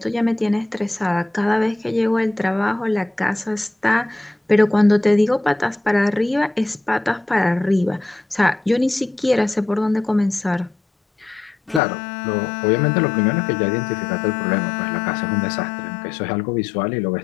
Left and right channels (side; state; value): right; drops out; at 11.8 s